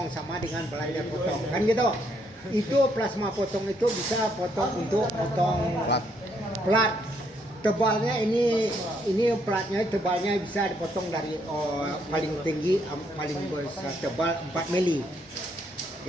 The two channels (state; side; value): normal; both; correlation 0.72